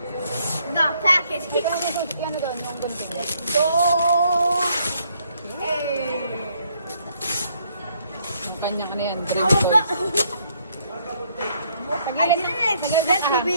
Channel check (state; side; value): inverted; both; correlation -0.69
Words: The package. Ano doon? Let's go. Hey. Ang kanyang ano yan, dream I toys. didn't expect to